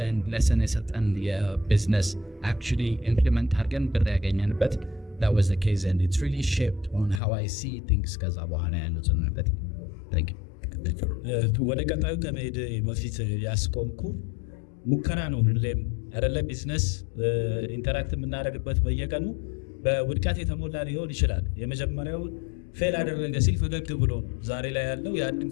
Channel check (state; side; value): drops out; right; at 7.2 s